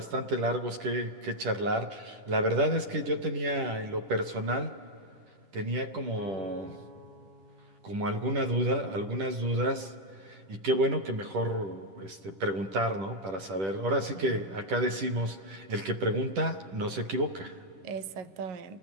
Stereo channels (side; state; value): left; late; 10 ms